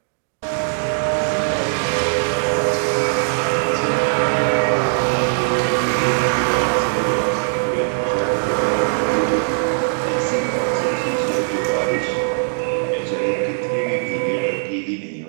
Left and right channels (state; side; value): silent; left; 66 dB below the other